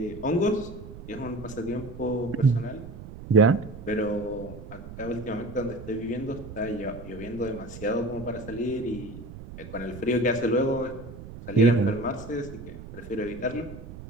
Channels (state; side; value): noise; right; rumble, 13 dB below the sound